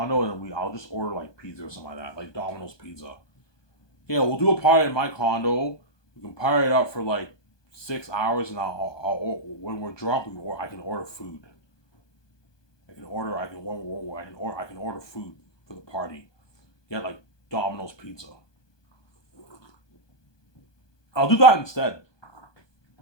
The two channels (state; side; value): late; right; 1.2 ms